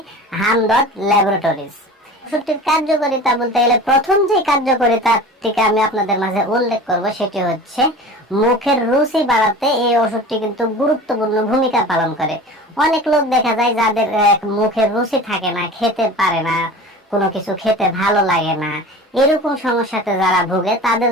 হামদর্দ ল্যাবরেটরিজ। ওষুধটির কার্যকারিতা বলতে গেলে প্রথম যে কার্যকারিতাটিকে আমি আপনাদের মাঝে উল্লেখ করব সেটি হচ্ছে মুখের রুচি বাড়াতে এই ওষুধটি কিন্তু গুরুত্বপূর্ণ ভূমিকা পালন করে। অনেক লোক দেখা যায় যাদের মুখের রুচি থাকে না, খেতে পারে না, কোনো কিছু খেতে ভালো লাগে না, এরকম সমস্যাতে যারা ভুগে তাদের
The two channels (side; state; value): both; normal; correlation 0.37